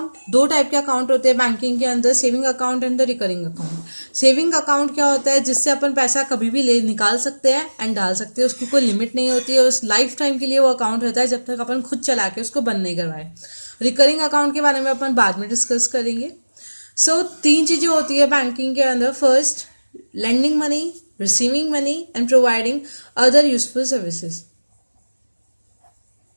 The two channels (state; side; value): inverted; both; correlation -1.00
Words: दो टाइप के अकाउंट होते हैं बैंकिंग के अंदर, saving account and the recurring account. Saving account क्या होता है? जिससे अपन पैसा कभी भी ले निकाल सकते हैं एंड डाल सकते हैं, उसकी कोई लिमिट नहीं होती है, उस लाइफ टाइम के लिए वो अकाउंट रहता है जब तक अपन खुद चला के उसको बंद नहीं करवाए। रिकरिंग अकाउंट के बारे में अपन बाद में डिस्कस करेंगे। सो तीन चीजें होती है बैंकिंग के अंदर। First, lending money, receiving money and providing other useful services.